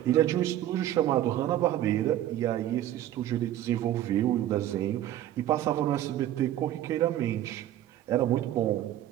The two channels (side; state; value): left; quieter; 12.7 dB